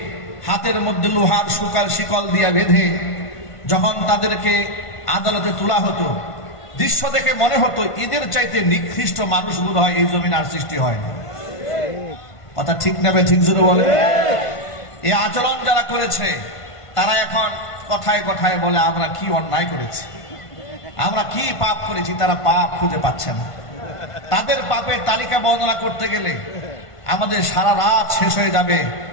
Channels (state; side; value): late; right; 1.5 ms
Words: হাতের মধ্যে লোহার শিকল দিয়ে বেঁধে যখন তাদেরকে আদালতে তোলা হতো, দৃশ্য দেখে মনে হতো এদের চাইতে নিকৃষ্ট মানুষ বোধ হয় এই জমিন আর সৃষ্টি হয় না। কথা ঠিক না? ঠিক জোরে বলে। এই আচরণ যারা করেছে তারা এখন কথায় কথায় বলে আমরা কি অন্যায় করেছি, আমরা কি পাপ করেছি, তারা পাপ খুঁজে পাচ্ছে না। তাদের পাপের তালিকা বর্ণনা করতে গেলে আমাদের সারা রাত শেষ হয়ে যাবে,